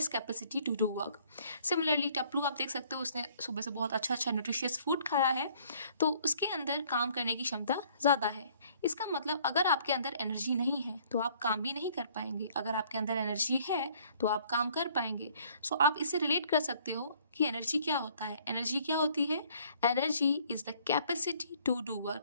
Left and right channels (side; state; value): both; inverted; correlation -0.60